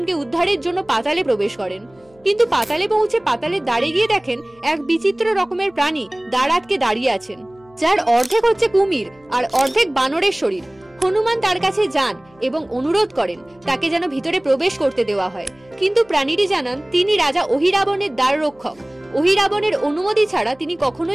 উদ্ধারের জন্য পাতালে প্রবেশ করেন। কিন্তু পাতালে পৌঁছে পাতালের দ্বারে গিয়ে দেখেন এক বিচিত্র রকমের প্রাণী দ্বার আটকে দাঁড়িয়ে আছেন, যার অর্ধেক হচ্ছে কুমির আর অর্ধেক বানরের শরীর। হনুমান তার কাছে যান এবং অনুরোধ করেন তাকে যেন ভিতরে প্রবেশ করতে দেওয়া হয়, কিন্তু প্রাণীটি জানান তিনি রাজা অহিরাবণের দ্বার রক্ষক। অহিরাবণের অনুমতি ছাড়া তিনি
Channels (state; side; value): noise; left; hum, 30 dB below the sound